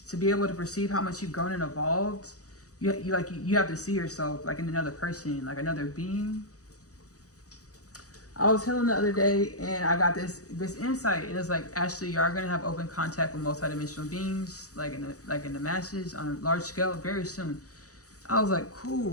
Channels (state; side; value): late; right; 0.66 ms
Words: to be able to perceive how much you've grown and evolved, you have to see yourself like in another person, like another being. I was healing the other day and I got this insight. It was like, Ashley, you are gonna have open contact with multidimensional beings, like in the masses on a large scale, very soon. I was like,